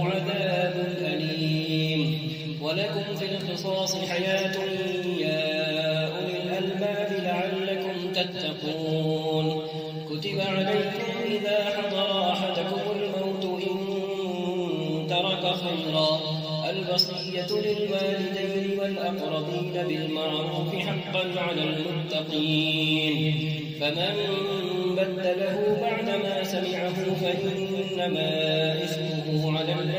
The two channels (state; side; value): identical; both; correlation 1.00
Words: عذاب أليم. ولكم في القصاص حياة يا أولي الألباب لعلكم تتقون. كتب عليكم إذا حضر أحدكم الموت إن ترك خيرا الوصية للوالدين والأقربين بالمعروف حقا على المتقين فمن بدله بعدما سمعه فإنما إثمه على